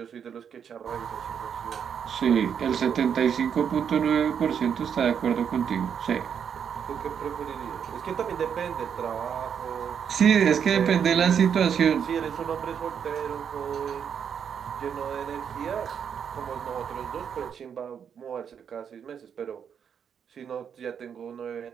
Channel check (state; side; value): quieter; left; 7.7 dB